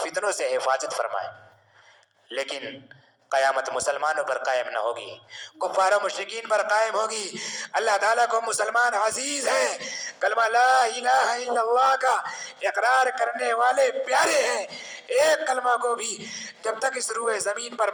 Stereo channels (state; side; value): identical; both; correlation 1.00